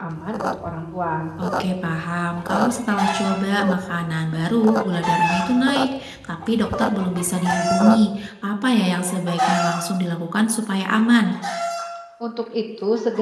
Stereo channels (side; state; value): both; identical; correlation 1.00